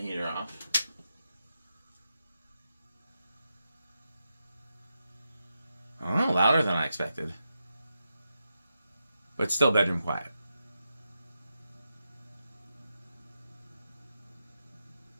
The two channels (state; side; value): inverted; both; correlation -0.88